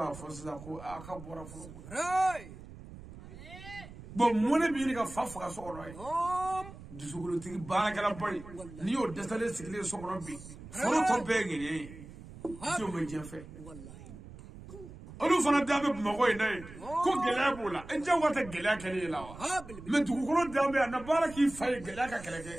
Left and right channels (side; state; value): right; noise; rumble, 15 dB below the sound